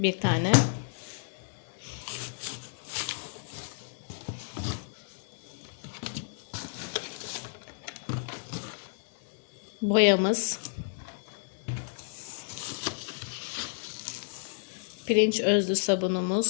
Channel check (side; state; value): right; silent; digital silence